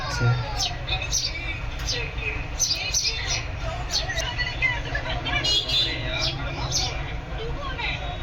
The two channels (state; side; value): identical; both; correlation 1.00